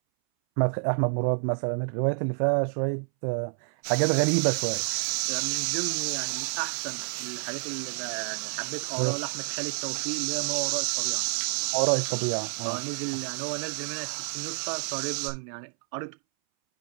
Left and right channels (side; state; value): left; silent; 59 dB below the other